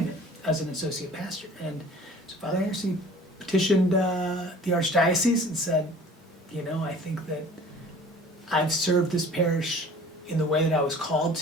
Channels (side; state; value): both; normal; correlation 0.47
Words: as an associate pastor. And so Father Anderson petitioned the archdiocese and said, you know, I think that I've served this parish in the way that I was called